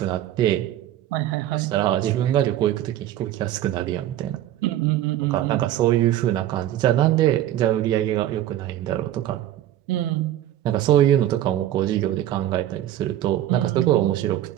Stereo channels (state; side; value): quieter; left; 12.7 dB